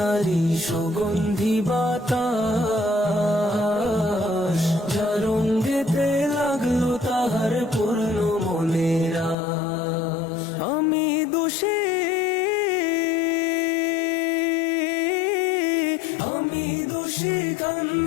সুগন্ধি বাতাস, যার রঙ্গেতে লাগলো তাহার পূর্ণ মনের আশ। আমি দোষী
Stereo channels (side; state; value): right; drops out; at 9.3 s